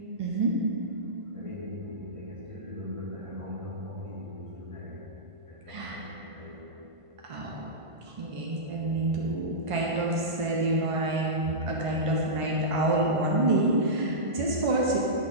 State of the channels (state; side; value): late; left; 1.5 ms